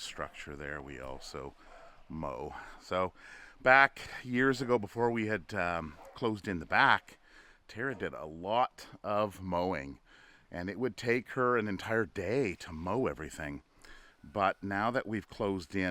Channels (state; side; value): identical; both; correlation 1.00